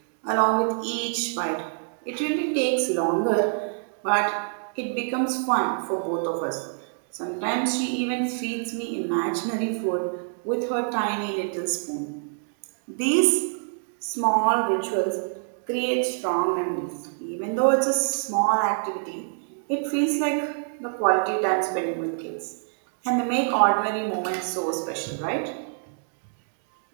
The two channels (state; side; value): silent; left; digital silence